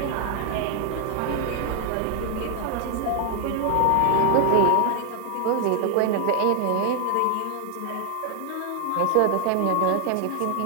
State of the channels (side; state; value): both; different; correlation 0.00